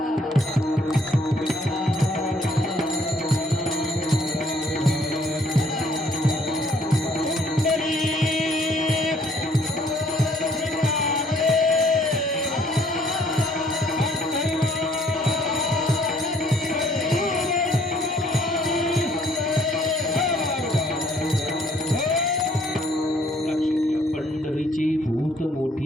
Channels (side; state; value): both; normal; correlation 0.63